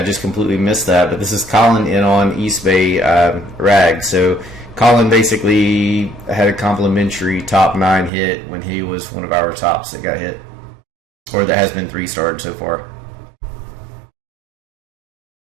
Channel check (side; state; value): left; drops out; at 8.1 s